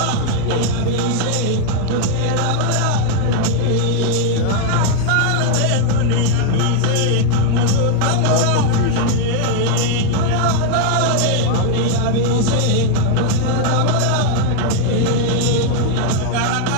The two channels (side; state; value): both; different; correlation 0.00